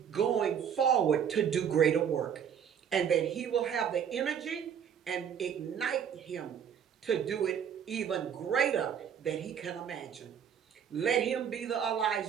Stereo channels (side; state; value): left; quieter; 8.2 dB